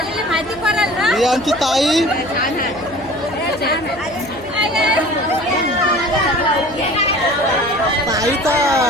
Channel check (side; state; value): right; noise; hum, 21 dB below the sound